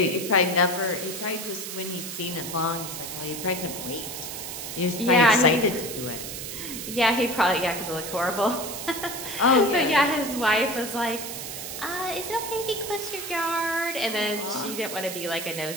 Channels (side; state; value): right; noise; hiss, 7 dB below the sound